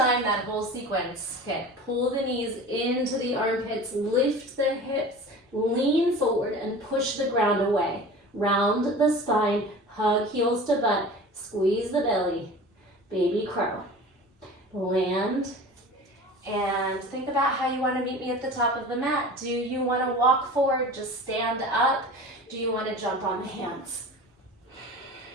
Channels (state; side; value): normal; both; correlation 0.38